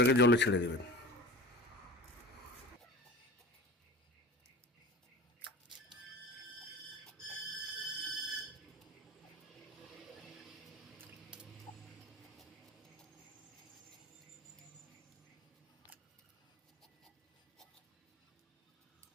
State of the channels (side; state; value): both; normal; correlation 0.36